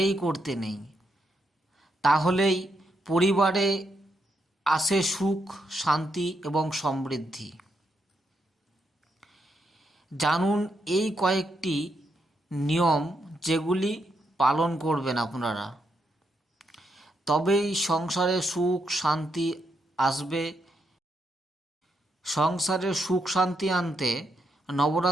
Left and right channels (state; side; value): normal; both; correlation 0.80